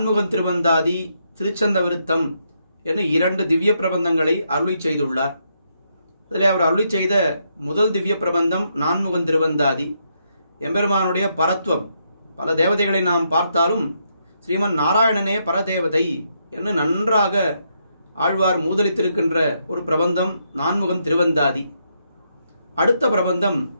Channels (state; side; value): inverted; both; correlation -0.78